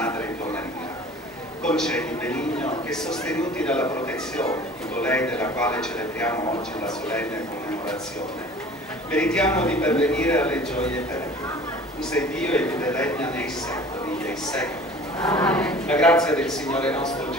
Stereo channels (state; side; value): normal; both; correlation 0.45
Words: tua Maria. Concedi, Benigno, che sostenuti dalla protezione di colei della quale celebriamo oggi la solenne commemorazione, meritiamo di pervenire alle gioie eterne. Tu sei Dio e vive e regna nei secoli dei secoli. Amen. La grazia del Signore nostro